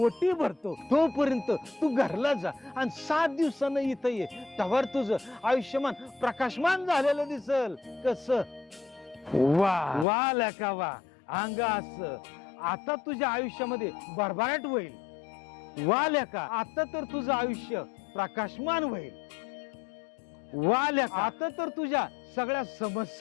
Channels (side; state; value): right; drops out; at 10.1 s